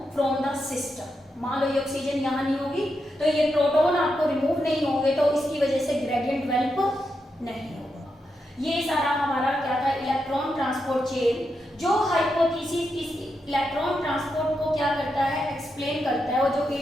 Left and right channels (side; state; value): both; normal; correlation 0.85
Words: from the system. मान लो ये ऑक्सीजन यहाँ नहीं होगी तो ये प्रोटॉन आपको रिमूव नहीं होंगे, तो इसकी वजह से ग्रेडियंट डेवलप नहीं होगा। ये सारा हमारा क्या था, इलेक्ट्रॉन ट्रांसपोर्ट चेन। जो हाइपोथेसिस इस इलेक्ट्रॉन ट्रांसपोर्ट को क्या करता है, एक्सप्लेन करता है, और जो